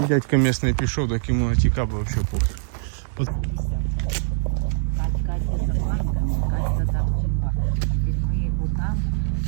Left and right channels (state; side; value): silent; left; 63 dB below the other